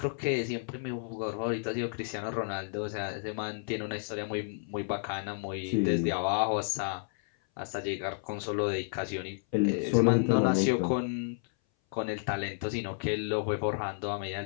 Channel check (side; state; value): right; silent; 57 dB below the other